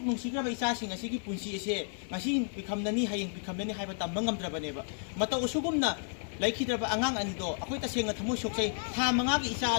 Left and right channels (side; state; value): right; silent; digital silence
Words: ꯅꯨꯡꯁꯤꯈ꯭ꯔꯕ ꯏꯆꯥꯁꯤꯡ ꯑꯁꯤꯒꯤ ꯄꯨꯟꯁꯤ ꯑꯁꯦ ꯉꯁꯤ ꯄꯤꯈꯝꯅꯅꯤ ꯍꯌꯦꯡ ꯄꯤꯈꯝꯅꯅꯤ ꯍꯥꯏꯕ ꯇꯝꯕ ꯉꯝꯗ꯭ꯔꯕꯅꯦꯕ ꯃꯇꯧ ꯑꯁꯨꯒꯨꯝꯅ ꯂꯩꯈꯤꯗ꯭ꯔꯕ ꯑꯉꯥꯡ ꯑꯅꯤꯗꯣ ꯑꯩꯈꯣꯏ ꯇꯁꯦꯡꯅ ꯊꯃꯣꯏ ꯁꯣꯛꯆꯩ ꯊꯥ 5ꯒꯤ ꯏꯆꯥ